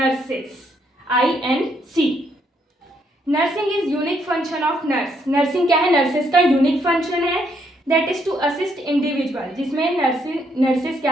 INC। Nursing is unique function of nurse. Nursing क्या है? नर्सेस का यूनिक फंक्शन है, that is to assist individual, जिसमें नर्सेस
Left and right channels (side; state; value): both; normal; correlation 0.73